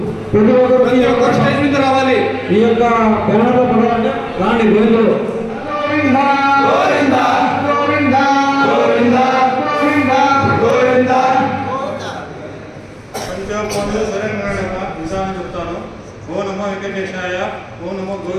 ప్రతి ఒక్కరు రావాలి, ఈ యొక్క బ్యానర్ లో పడాలంటే రాండి. గోవిందులు విధానం చెప్తాను. ఓ నమో వెంకటేశాయ, ఓ నమో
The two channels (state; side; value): identical; both; correlation 1.00